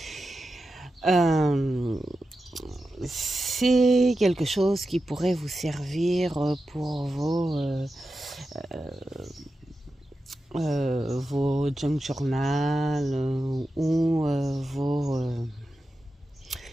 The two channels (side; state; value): both; normal; correlation 0.91